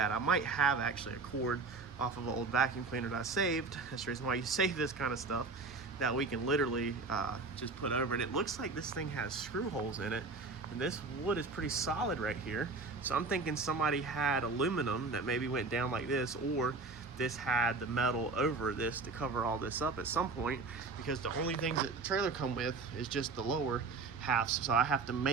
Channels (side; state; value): left; quieter; 4.0 dB